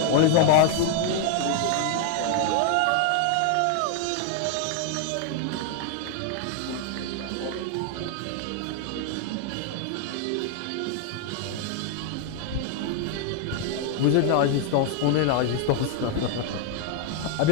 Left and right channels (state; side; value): different; both; correlation 0.00